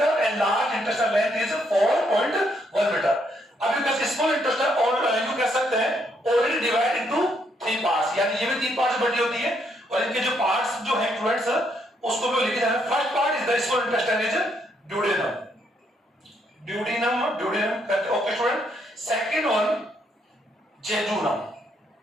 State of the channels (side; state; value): both; normal; correlation 0.74